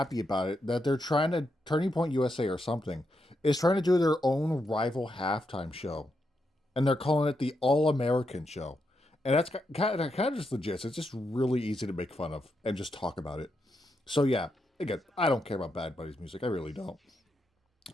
about it that they're trying to Turning Point USA or something is trying to do their own rival halftime show, and they're calling it the All American Show, and that's kind of just legit. It's just really easy to make fun of and just talk about it. So yeah, again, I don't care about Bad Bunny's music. I really don't.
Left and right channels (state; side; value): normal; both; correlation 0.83